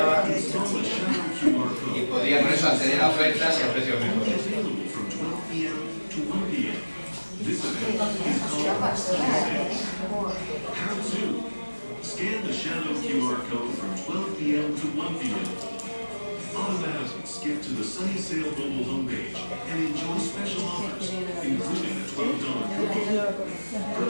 y podía con eso acceder a ofertas y a precios mejores. Scan the shadow QR code from 12 p.m. to 1 p.m. Automatically skip to the Sunny Sale mobile homepage and enjoy special offers, including a $12 coupon.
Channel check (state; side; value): inverted; both; correlation -1.00